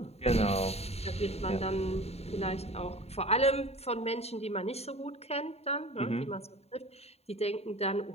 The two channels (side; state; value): right; late; 0.30 ms